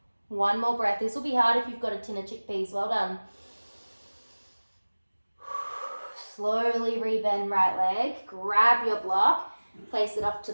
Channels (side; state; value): both; inverted; correlation -1.00